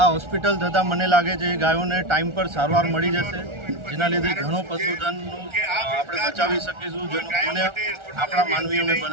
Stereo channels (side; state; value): left; late; 1.4 ms